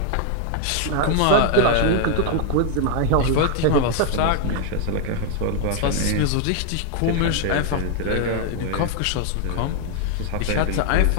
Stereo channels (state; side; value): different; both; correlation 0.00